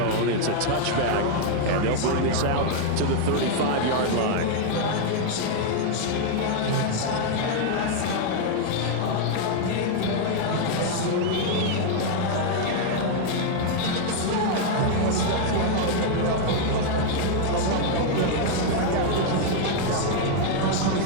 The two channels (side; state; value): both; different; correlation 0.00